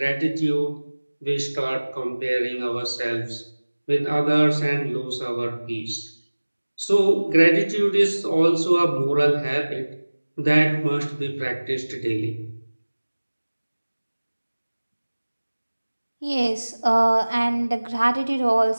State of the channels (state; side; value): inverted; both; correlation -1.00